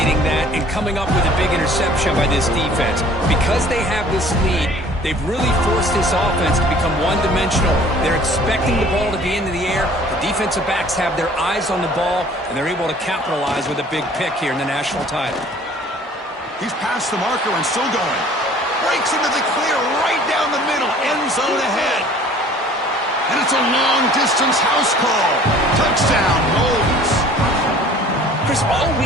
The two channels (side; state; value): both; normal; correlation 0.51